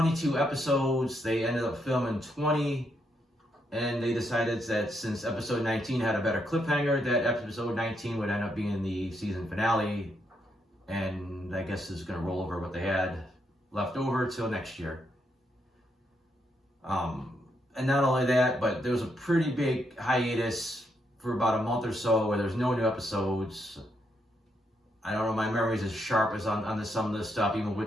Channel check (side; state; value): both; normal; correlation 0.78